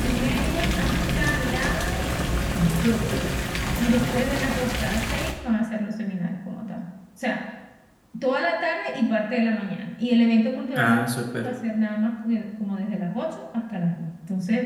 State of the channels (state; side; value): identical; both; correlation 1.00